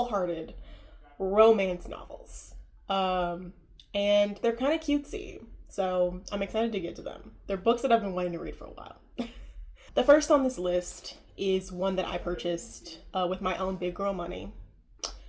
romance novels. And they're kind of cutesy. So I'm excited to get to them. They're books that I've been wanting to read for a while. The first on this list is one that I purchased with my own big girl money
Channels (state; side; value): identical; both; correlation 1.00